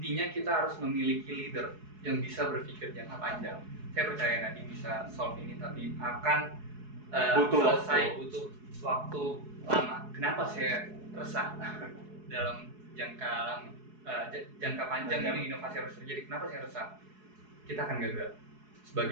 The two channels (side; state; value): left; late; 4.7 ms